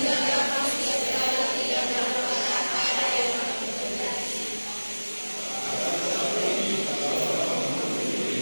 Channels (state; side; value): inverted; both; correlation -1.00